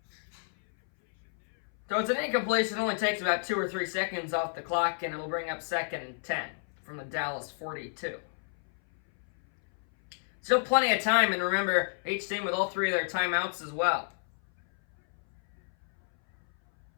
So it's an incompletion. It only takes about 2 or 3 seconds off the clock, and it'll bring up 2nd and 10 from the Dallas 42. Still plenty of time, and remember, each team with all 3 of their timeouts as well.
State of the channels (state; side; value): silent; right; 57 dB below the other